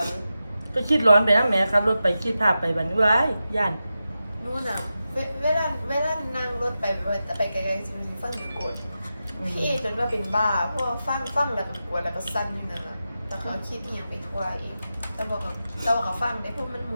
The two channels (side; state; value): both; inverted; correlation -0.91